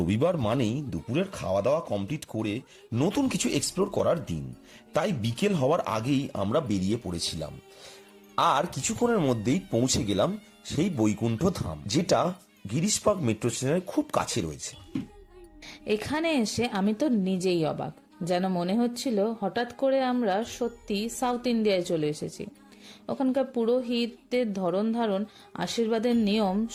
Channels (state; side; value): identical; both; correlation 1.00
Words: মানেই দুপুরের খাওয়া দাওয়া কমপ্লিট করে নতুন কিছু এক্সপ্লোর করার দিন। তাই বিকেল হওয়ার আগেই আমরা বেরিয়ে পড়েছিলাম, আর কিছুক্ষণের মধ্যেই পৌঁছে গেলাম সেই বৈকুণ্ঠ ধাম, যেটা গিরিশ পার্ক মেট্রো স্টেশনের খুব কাছে রয়েছে। এখানে এসে আমি তো নিজেই অবাক। যেন মনে হচ্ছিল হঠাৎ করে আমরা সত্যি সাউথ ইন্ডিয়ায় চলে এসেছি। ওখানকার পুরোহিতদের ধরন ধারণ, আশীর্বাদের নিয়ম